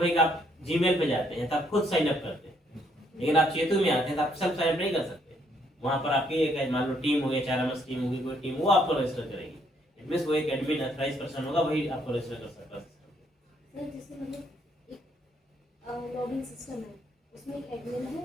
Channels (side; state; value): both; normal; correlation 0.70